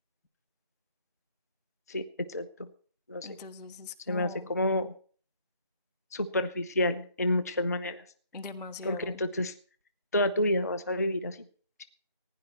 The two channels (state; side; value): inverted; both; correlation -0.63